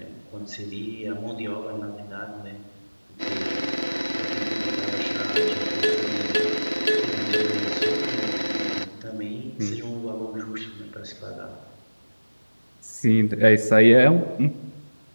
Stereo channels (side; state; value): both; inverted; correlation -1.00